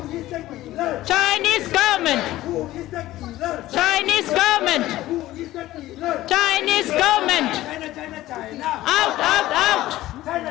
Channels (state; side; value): quieter; right; 15.8 dB